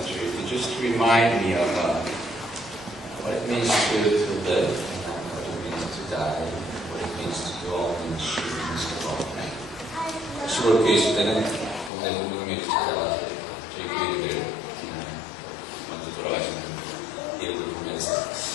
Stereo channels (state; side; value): drops out; right; at 11.9 s